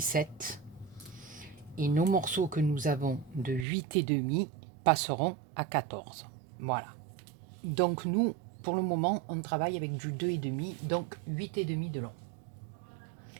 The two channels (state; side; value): drops out; left; at 3.7 s